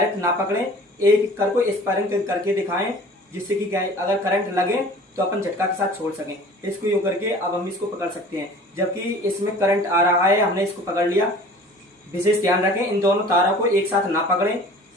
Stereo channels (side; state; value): both; normal; correlation 0.46